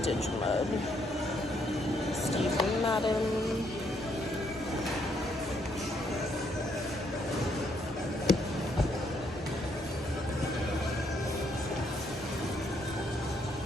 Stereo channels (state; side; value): normal; both; correlation 0.72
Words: mud. Steve Madden.